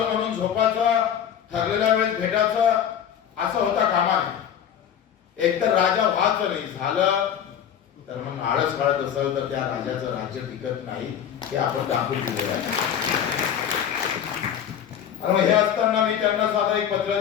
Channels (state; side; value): quieter; right; 9.0 dB